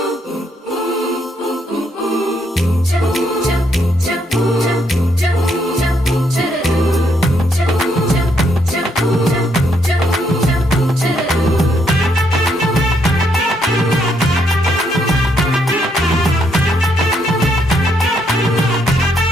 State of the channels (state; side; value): normal; both; correlation 0.74